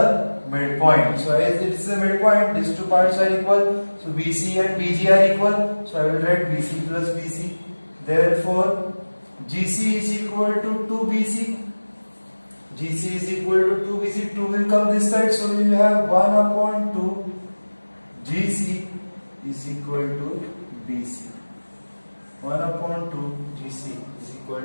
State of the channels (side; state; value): both; inverted; correlation -1.00